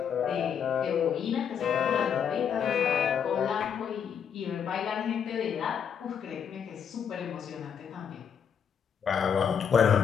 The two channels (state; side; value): quieter; right; 7.7 dB